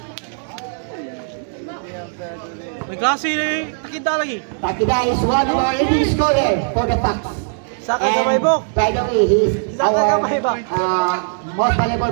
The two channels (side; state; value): left; silent; digital silence